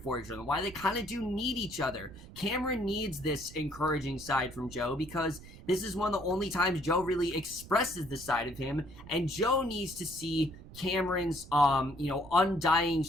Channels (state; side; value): noise; right; rumble, 17 dB below the sound